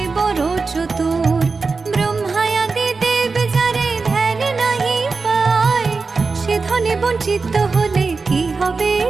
বড় চতুর। ব্রহ্মায়াদি দেব যারে ধ্যান নাহি পায়, সে ধনে বঞ্চিত হলে কি হবে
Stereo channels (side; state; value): left; quieter; 4.3 dB